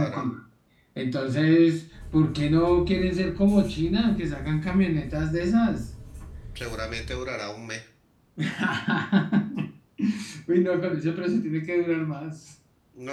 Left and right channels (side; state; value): both; identical; correlation 1.00